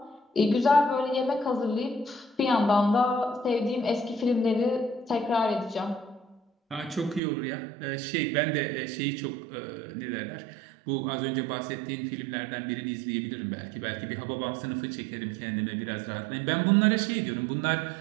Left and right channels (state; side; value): drops out; left; at 7.2 s